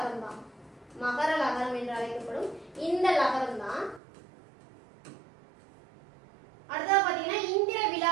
தான். மகர லகரம் என்று அழைக்கப்படும் இந்த லகரம் தான். அடுத்தது பாத்தீங்கன்னா இந்திர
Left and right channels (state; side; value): drops out; left; at 4.0 s